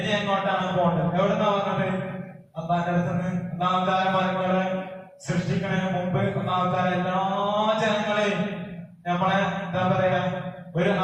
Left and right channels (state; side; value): identical; both; correlation 1.00